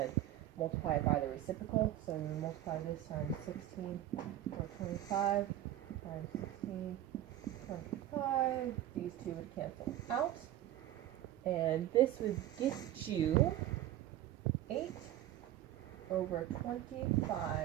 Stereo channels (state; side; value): quieter; left; 13.2 dB